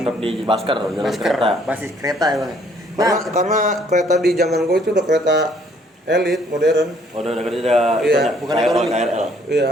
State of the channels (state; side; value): normal; both; correlation 0.63